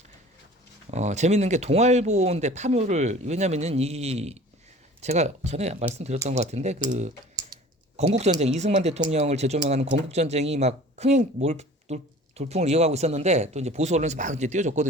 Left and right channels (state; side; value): normal; both; correlation 0.45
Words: 재밌는 게 동아일보인데 파묘를 왜냐면은 이 제가 전에 말씀드렸던 것 같은데 그 건국전쟁 이승만 대통령을 재조명하는 건국전쟁이 막 흥행 돌풍을 이어가고 있었는데 또 이제 보수 언론에서 막 이제